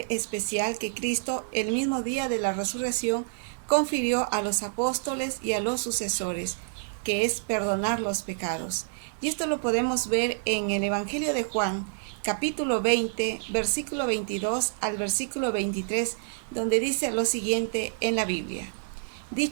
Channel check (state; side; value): silent; left; digital silence